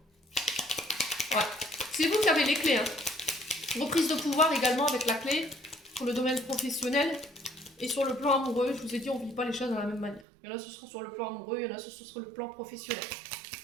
Ouais. C'est vous qui avez les clés. Hein. Reprise de pouvoir également avec la clé pour le domaine professionnel et sur le plan amoureux. Je vous ai dit, on ne vit pas les choses de la même manière. Il y en a, ce sera sur le plan amoureux, il y en a, ce sera le plan professionnel.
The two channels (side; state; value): left; drops out; at 10.2 s